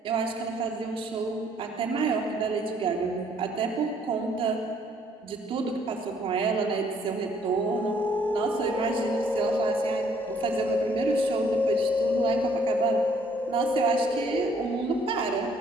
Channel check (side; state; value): both; normal; correlation 0.64